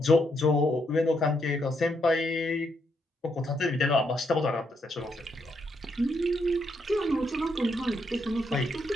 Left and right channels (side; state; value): both; normal; correlation 0.77